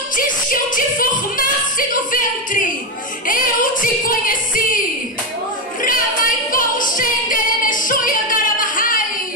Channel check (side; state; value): both; normal; correlation 0.10